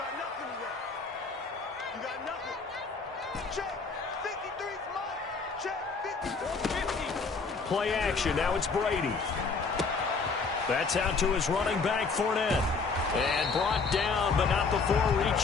nothing left. You got nothing. Check. 53's mark. Check. 50. 50. Play action. Now it's Brady. That's out to his running back, Fournette. And brought down, but not before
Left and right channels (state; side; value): quieter; right; 4.5 dB